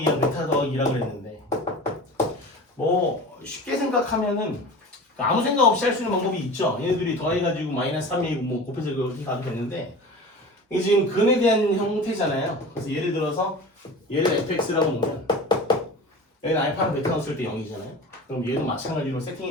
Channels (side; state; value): both; normal; correlation 0.35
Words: 베타 더하기라고 그랬는데 뭐 쉽게 생각하면은 아무 생각 없이 할 수 있는 방법이 있죠. 얘네들이 더해가지고 마이너스 3이고 뭐 곱해서 이렇게 가도 되는데 이게 지금 근에 대한 형태잖아요. 그래서 예를 들어서 얘를 fx라고 놓으면 얘는 알파랑 베타 넣었을 때 0이잖아요. 그럼 얘도 마찬가지로